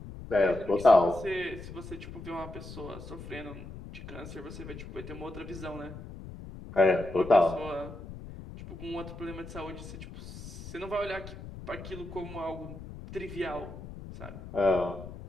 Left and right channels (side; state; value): left; noise; rumble, 12 dB below the sound